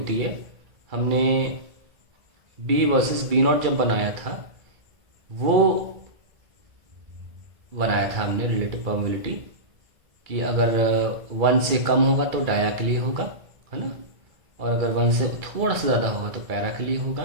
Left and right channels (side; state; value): left; late; 2.3 ms